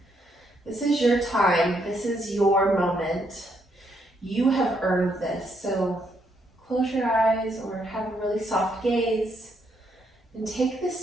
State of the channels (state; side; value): normal; both; correlation 0.75